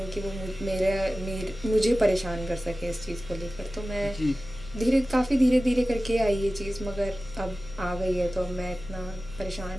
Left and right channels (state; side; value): noise; right; hum, 23 dB below the sound